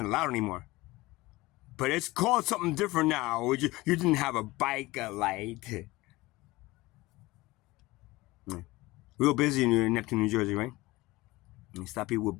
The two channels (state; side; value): quieter; right; 20.2 dB